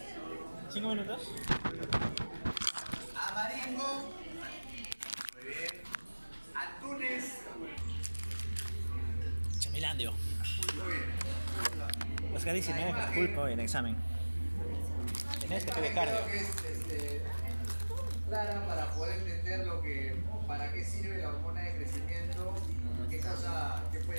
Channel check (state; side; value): inverted; both; correlation -1.00